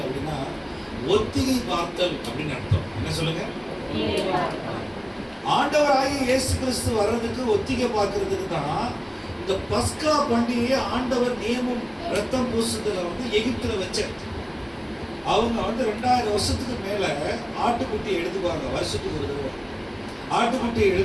அப்படின்னா ஒத்திகை பார்த்தல் அப்படின்னு அர்த்தம். என்ன சொல்லுங்க? ஆண்டவராகிய இயேசு கிறிஸ்து வர்றதுக்கு ஒத்திகை பார்க்கறதுக்கு தான் இந்த பஸ்கா பண்டிகையை ஆண்டவர் நியமம் ரத்தம் பூசுதல வந்து எகிப்துல வச்சார். அவங்க வந்து 2000 வருஷத்துக்கு மேல ஆட்டுக்குட்டியை எடுத்துக்குவாங்க. வருஷத்துக்கு ஒரு தடவை ஆட்டுக்குட்டியை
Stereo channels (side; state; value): both; identical; correlation 1.00